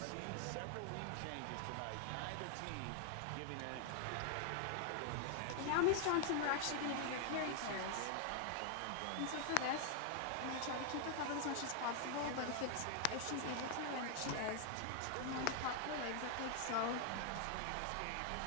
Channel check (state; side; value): different; both; correlation 0.00